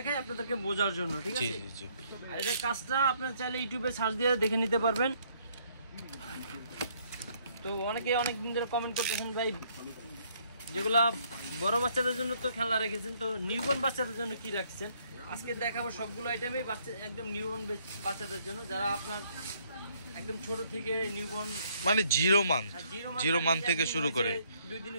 আপনাদেরকে বোঝার জন্য, ঠিক আছে? জি জি। আর এটা কাজটা আপনারা চাইলে ইউটিউবে সার্চ দিয়ে দেখে নিতে পারবেন। তো অনেকে অনেক দিন ধরে কমেন্ট করতেছেন ভাই যেগুলা বড় বাচ্চাদের জন্য তো খেলনা রেখেছেন, তো নিউবর্ন বাচ্চাদের জন্য কি রাখছেন? আজকে দেখাবো সবগুলো আইটেমই বাচ্চা একদম নিউবর্ন বাচ্চাদের জন্য, যারা আপনার একদম ছোট থেকে নিউবর্ন মানে জিরো মান থেকে শুরু করে 2 দিন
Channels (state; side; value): inverted; both; correlation -0.67